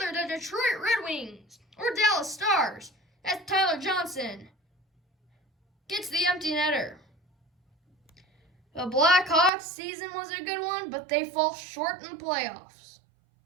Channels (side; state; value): left; drops out; at 9.5 s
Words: the Detroit Red Wings or Dallas Stars, as Tyler Johnson gets the empty netter. The Blackhawks season was a good one, but they fall short in the playoffs.